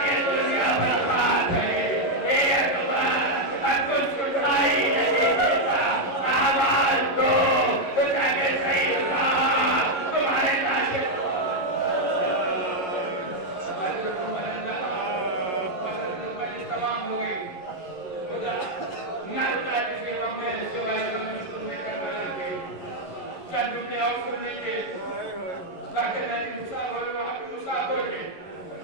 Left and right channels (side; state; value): right; late; 11 ms